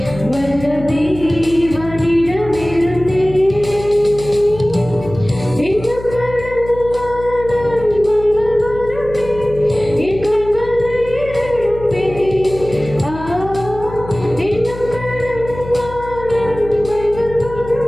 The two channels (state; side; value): noise; left; hum, 13 dB below the sound